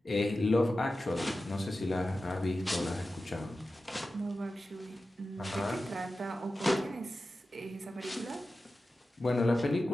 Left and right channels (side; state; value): both; normal; correlation 0.93